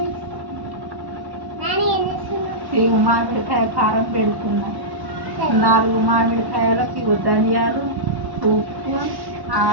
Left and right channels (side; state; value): left; late; 1.1 ms